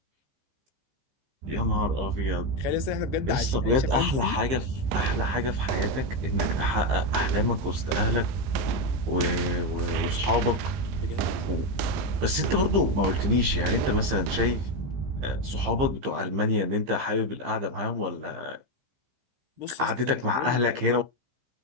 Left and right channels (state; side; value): late; left; 15 ms